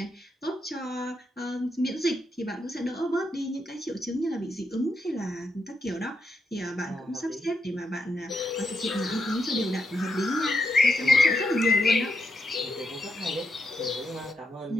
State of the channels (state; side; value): normal; both; correlation 0.82